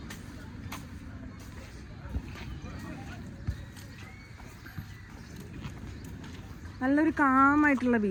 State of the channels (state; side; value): identical; both; correlation 1.00